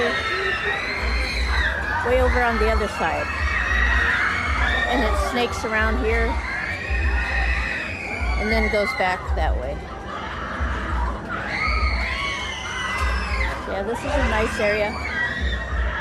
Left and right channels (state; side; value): identical; both; correlation 1.00